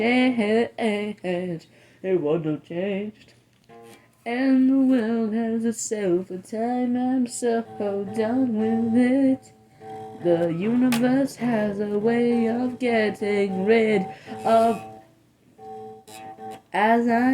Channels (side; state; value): both; identical; correlation 1.00